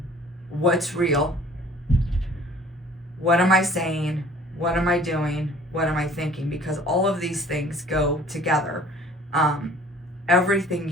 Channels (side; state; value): both; normal; correlation 0.51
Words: what's real, what am I saying, what am I doing, what am I thinking, because all of these things go together. Everything